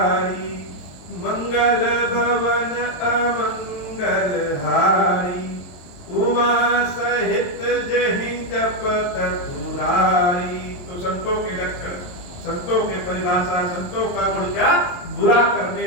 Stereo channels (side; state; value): right; late; 22 ms